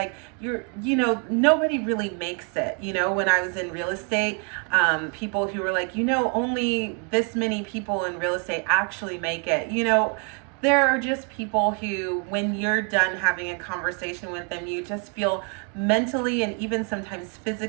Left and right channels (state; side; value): quieter; left; 38.0 dB